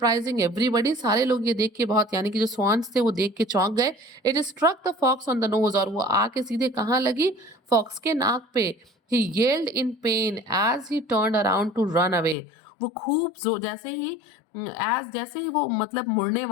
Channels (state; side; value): drops out; right; at 12.4 s